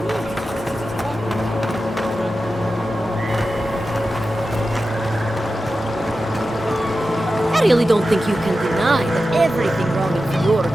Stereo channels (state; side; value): normal; both; correlation 0.92